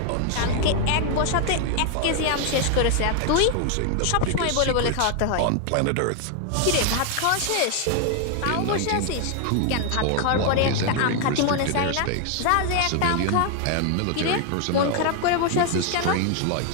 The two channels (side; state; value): both; different; correlation 0.00